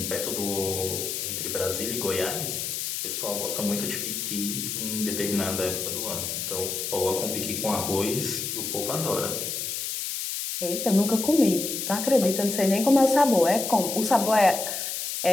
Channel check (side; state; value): left; noise; hiss, 3 dB below the sound